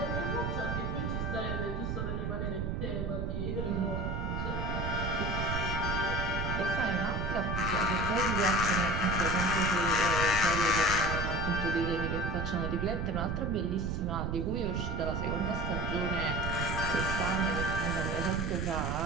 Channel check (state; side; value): noise; right; rumble, 1 dB below the sound